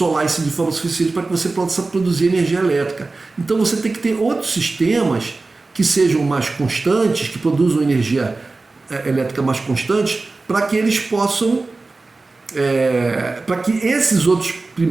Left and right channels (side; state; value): left; quieter; 3.5 dB